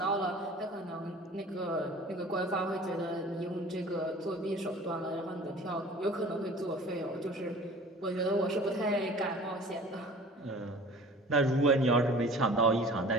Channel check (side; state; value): both; normal; correlation 0.44